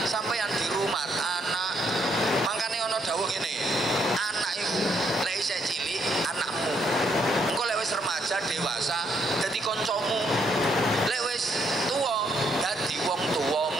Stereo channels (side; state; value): both; normal; correlation 0.73